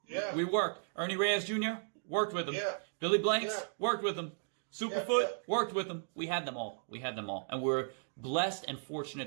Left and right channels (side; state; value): left; silent; digital silence